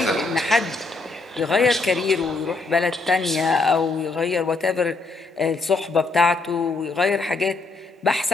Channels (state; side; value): quieter; right; 3.6 dB